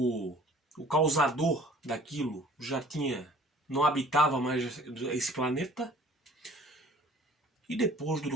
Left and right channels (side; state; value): both; normal; correlation 0.52